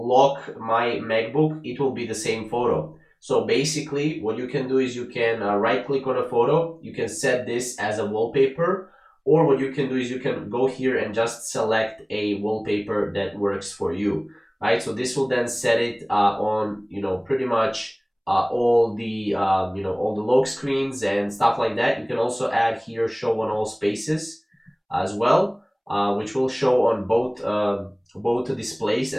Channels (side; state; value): both; identical; correlation 1.00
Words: my MacBook, it will be the same photo. So basically what you can do is you can right click on a photo, you can set this as a wallpaper, or what you can do is you can go here and just select a wallpaper that works for you, right? So this will then set it on, pretty much all the, all the lock screens and stuff like that. You can also add here show on all spaces as well, which will show on both displays